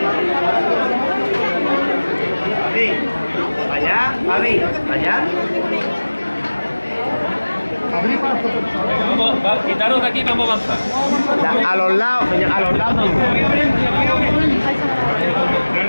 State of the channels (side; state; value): both; inverted; correlation -1.00